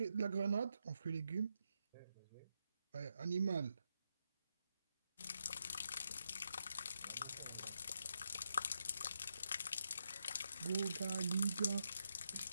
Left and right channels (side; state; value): both; inverted; correlation -0.82